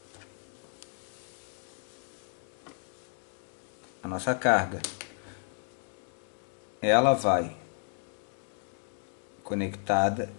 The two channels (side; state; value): right; silent; 56 dB below the other